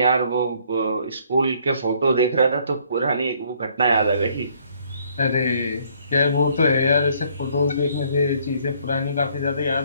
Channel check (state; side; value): inverted; both; correlation -0.64